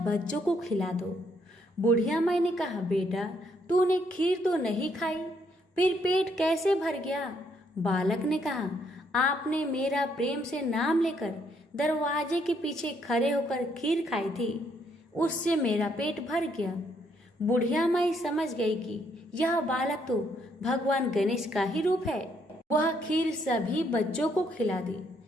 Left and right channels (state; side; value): normal; both; correlation 0.71